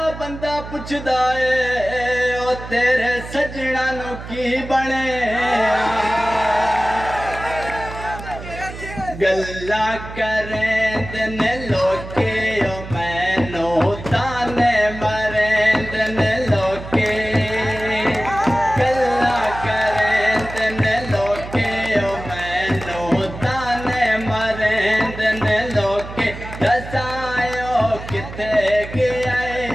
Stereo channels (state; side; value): noise; right; hum, 11 dB below the sound